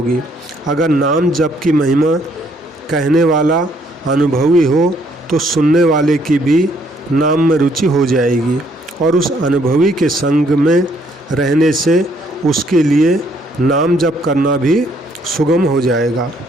अगर नाम जप की महिमा कहने वाला अनुभवी हो तो सुनने वाले की भी नाम में रुचि हो जाएगी और उस अनुभवी के संग में रहने से उसके लिए नाम जप करना भी सुगम हो जाएगा।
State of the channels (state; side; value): normal; both; correlation 0.67